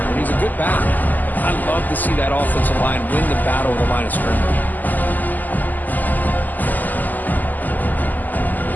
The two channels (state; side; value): late; right; 0.084 ms